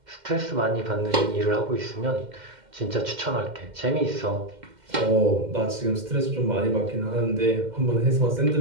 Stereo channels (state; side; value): late; left; 2.1 ms